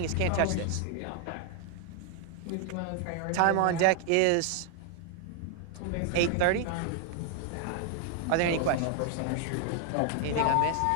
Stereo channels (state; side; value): different; both; correlation 0.00